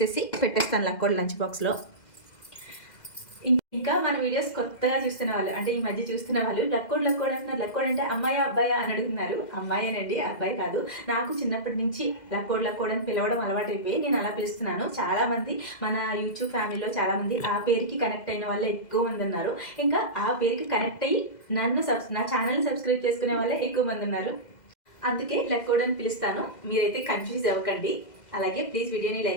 పెట్టేస్తాను లక్కోడ్ లంచ్ బాక్స్లో. ఇంకా మన వీడియోస్ కొత్తగా చూస్తున్న వాళ్ళు, అంటే ఈ మధ్య చూస్తున్న వాళ్ళు లక్కోడ్ అంటున్నారు. లక్కోడ్ అంటే అమ్మాయా అబ్బాయా అని అడుగుతున్నారు. అమ్మాయేనండి, అబ్బాయి కాదు. నాకు చిన్నప్పటి నుంచి లక్కోడ్ అని పిలవడం అలవాటు అయిపోయి నేను అలా పిలుస్తున్నాను. చాలామంది మన యూట్యూబ్ ఫ్యామిలీలో చాలామంది ఆ పేరుకి కనెక్ట్ అయిన వాళ్ళే ఎక్కువ మంది ఉన్నారు. ఇంకా ఆ పేరుకి కనెక్ట్ అయ్యి నా ఛానల్ని సబ్స్క్రైబ్ చేసుకునే వాళ్ళే ఎక్కువ మంది ఉన్నారు. అందుకే లక్కోడ్ అని పిలుస్తాను. మీరైతే కన్ఫ్యూజ్ అవ్వకండి. అలాగే ప్లీజ్ వీడియోని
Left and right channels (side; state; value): right; late; 2.0 ms